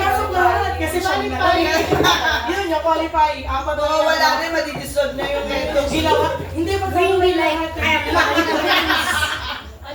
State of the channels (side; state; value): both; identical; correlation 1.00